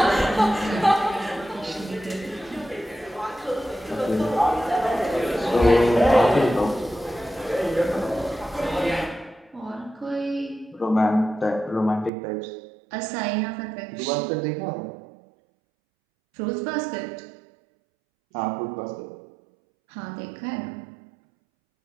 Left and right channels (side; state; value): left; drops out; at 12.1 s